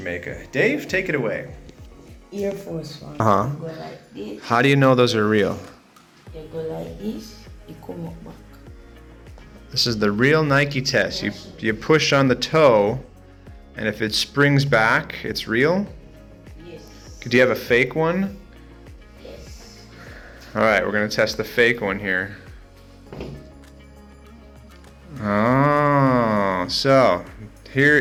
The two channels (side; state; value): both; identical; correlation 1.00